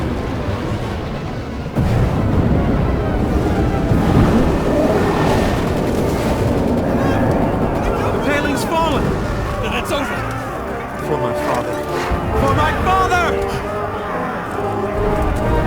It's over! For my father. For my father!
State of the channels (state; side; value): identical; both; correlation 1.00